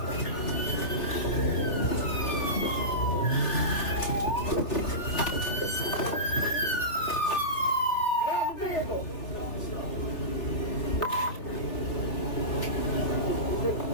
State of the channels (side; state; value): right; late; 3.5 ms